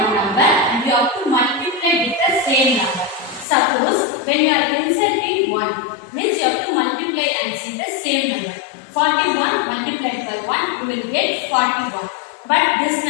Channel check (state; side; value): drops out; right; at 3.5 s